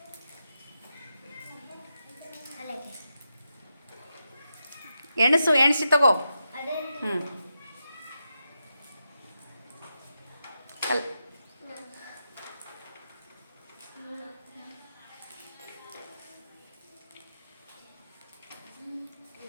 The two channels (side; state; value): both; inverted; correlation -0.87